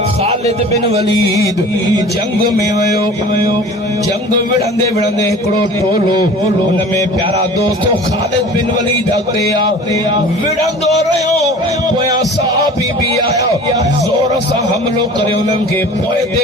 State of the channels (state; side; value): normal; both; correlation 0.42